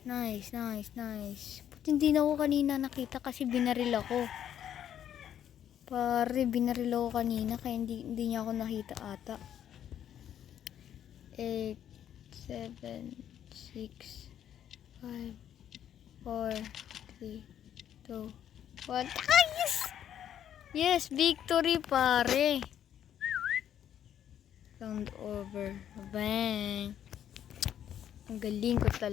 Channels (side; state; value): right; quieter; 10.1 dB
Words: Nice. But hindi na ako kanina nakita kasi binaril ako. Pare, binaril ako kanina kaya hindi niya ako nakita ata. 8, 7, 6, 5, 4, 3, 2, 1. Ah, yes! Yes, victory, pare. Round over. Bang. Ang galing ko